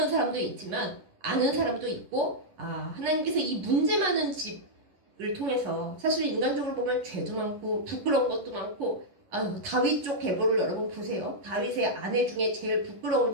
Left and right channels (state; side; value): late; left; 11 ms